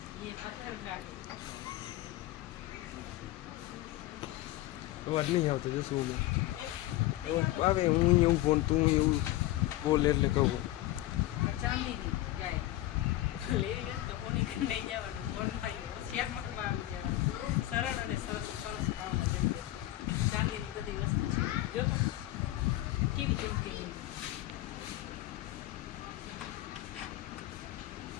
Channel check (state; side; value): quieter; right; 15.9 dB